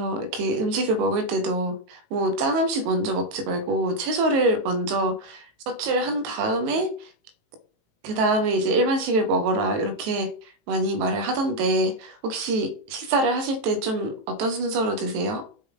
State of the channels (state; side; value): late; left; 18 ms